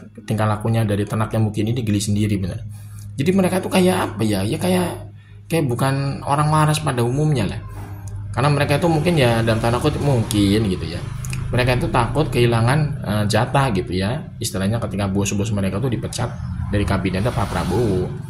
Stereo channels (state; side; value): identical; both; correlation 1.00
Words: tingkah lakunya dari tenaknya Mukidi ini, geli sendiri bener. Jadi mereka tuh kayak apa ya? Ya kayak bukan orang waras pada umumnya lah. Karena mereka itu mungkin ya dalam tanda kutip mungkin gitu ya. Mereka itu takut kehilangan jatah gitu ya. Istilahnya ketika bos-bos mereka tuh dipecat dari kabinetnya Pak Prabowo.